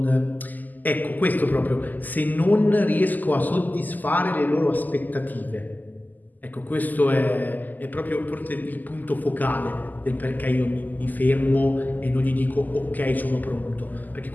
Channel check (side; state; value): right; late; 0.084 ms